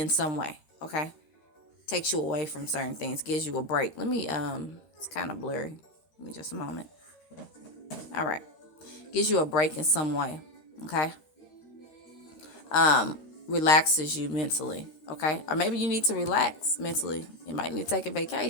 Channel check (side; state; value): right; late; 13 ms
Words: some way. Okay. Takes you away from certain things, gives you a break. It's kind of blurry. Give me just a moment. All right. Gives you a break in some way. Okay. Relaxes you mentally. Okay. Or maybe you need to relax mentally. You might need to take a